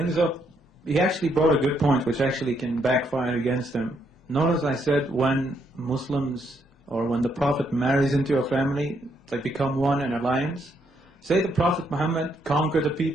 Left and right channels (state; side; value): normal; both; correlation 0.74